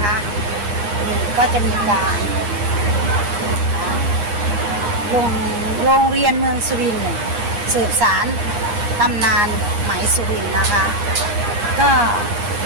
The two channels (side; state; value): left; late; 9.7 ms